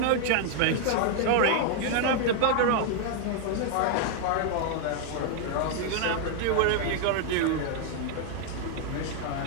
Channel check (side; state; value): both; different; correlation 0.00